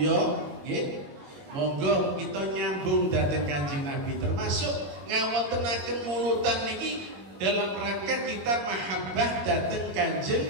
nggih, monggo kita nyambung dhateng Kanjeng Nabi, termasuk ngawontenaken mulutan niki dalam rangka kita mahabbah dhateng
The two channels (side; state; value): left; late; 21 ms